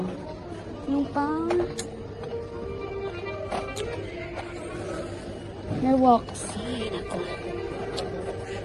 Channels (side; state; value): both; identical; correlation 1.00